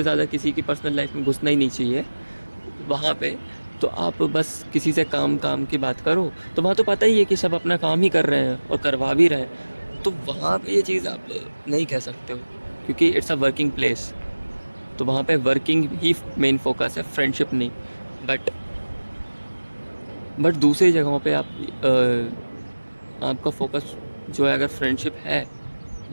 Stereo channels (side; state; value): both; inverted; correlation -1.00